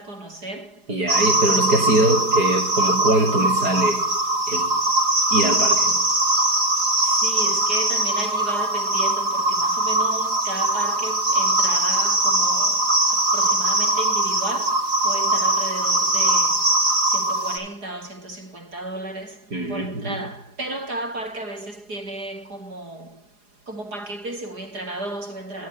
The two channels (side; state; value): left; late; 4.8 ms